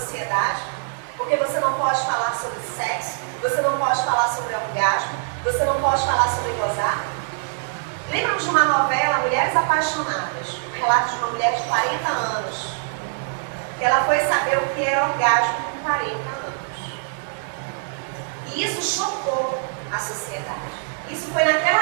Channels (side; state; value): left; silent; 63 dB below the other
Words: Porque você não pode falar sobre sexo, você não pode falar sobre orgasmo, você não pode falar sobre gozar. Lembram de uma novela, Mulheres Apaixonadas? Um relato de uma mulher de 40 anos. Que ela foi saber o que era orgasmo com 40 anos. E isso chocou a sociedade. Isso foi